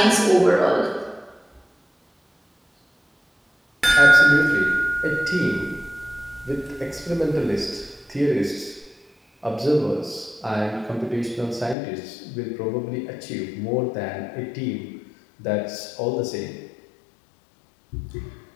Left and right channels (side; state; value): right; drops out; at 11.8 s